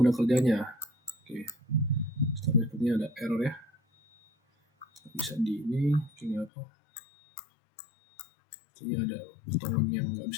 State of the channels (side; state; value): right; drops out; at 6.5 s